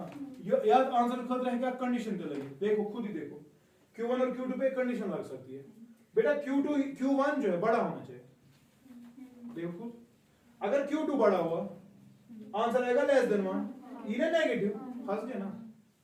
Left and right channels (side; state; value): both; identical; correlation 1.00